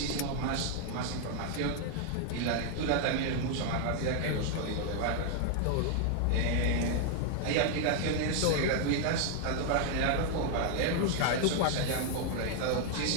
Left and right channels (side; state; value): both; different; correlation 0.00